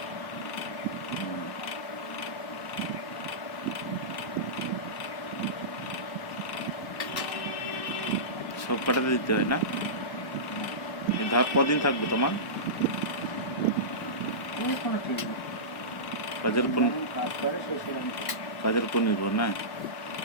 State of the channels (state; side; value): late; right; 1.0 ms